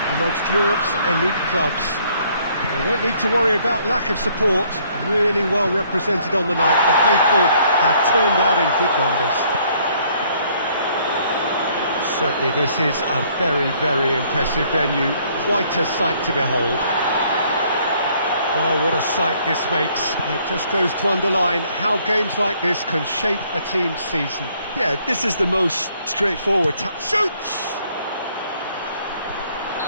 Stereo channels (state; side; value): inverted; both; correlation -0.64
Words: amongst Europe's elite clubs. They won't need to worry about lack of support. Really well represented on the night. The faithful have turned out in good numbers. Certainly this is a very, very impressive venue. Quite a sight to behold. Well, what a sight this makes. It just goes to underline how games like this can shape a team's season. Yeah, this is the most straightforward. Shoots!